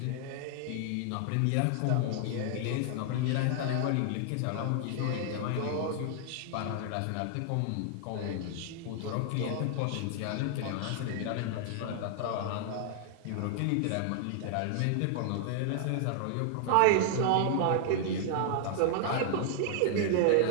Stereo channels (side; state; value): both; different; correlation -0.01